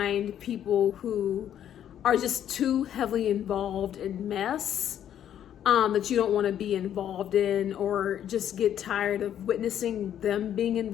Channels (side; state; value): right; quieter; 10.3 dB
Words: people who are just too heavily involved in mess that you don't want to be involved in, or just get tired of witnessing them being